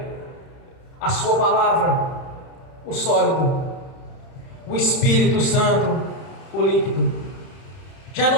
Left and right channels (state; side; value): late; right; 31 ms